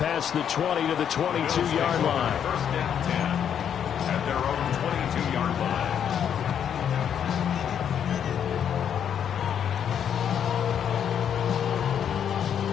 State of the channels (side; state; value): right; quieter; 8.7 dB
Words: the 20 to the 22-yard line. First down 10 at their own 22-yard line.